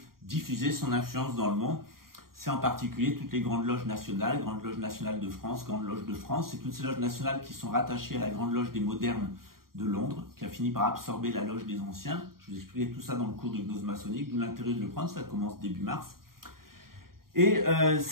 diffuser son influence dans le monde. C'est en particulier toutes les grandes loges nationales, Grande Loge nationale de France, Grande Loge de France, c'est toutes ces loges nationales qui sont rattachées à la Grande Loge des modernes de Londres, qui a fini par absorber la loge des anciens. Je vous expliquerai tout ça dans le cours de gnose maçonnique, d'où l'intérêt de le prendre, ça commence début mars. Et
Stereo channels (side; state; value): left; late; 0.92 ms